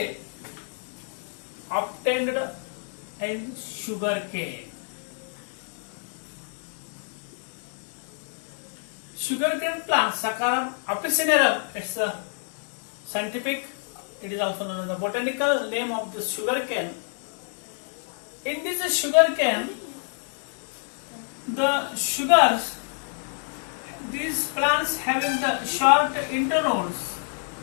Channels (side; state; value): right; silent; 60 dB below the other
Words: and sugar cane. Sugarcane plant, Saccharum officinarum, it's a scientific, it is also known as the botanical name of the sugarcane. In this sugarcane, the sugars, these plants having the short internodes,